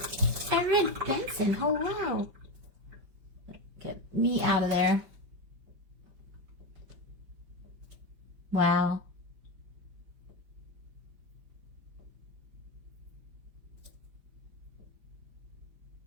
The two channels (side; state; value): left; late; 5.4 ms